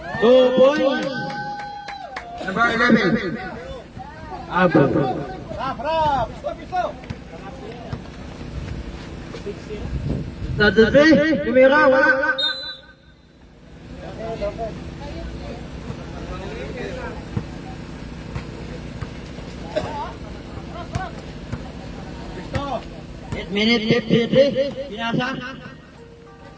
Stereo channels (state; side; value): identical; both; correlation 1.00